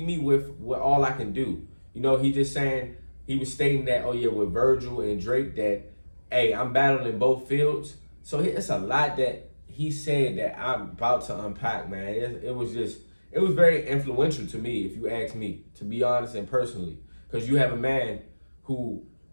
me with all I can do. You know, he was stating that, oh yeah, with Verzuz and Drake that, hey, I'm battling in both fields. So it's a lot that he said that I'm about to unpack, man, it was very influential to me, if you ask me, to be honest and personally. Because you have a man who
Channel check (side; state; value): both; inverted; correlation -1.00